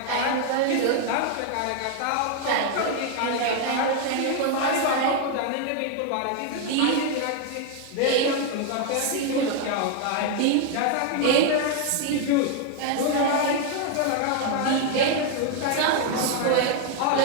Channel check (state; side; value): different; both; correlation 0.01